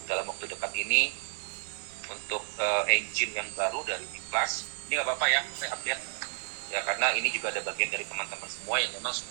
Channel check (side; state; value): left; silent; digital silence